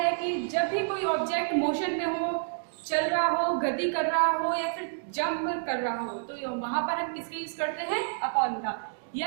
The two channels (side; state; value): left; silent; digital silence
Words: कि जब भी कोई ऑब्जेक्ट मोशन में हो, चल रहा हो, गति कर रहा हो या फिर जंप कर रहा हो, तो वहां पर हम किसका यूज करते हैं, अपॉन का।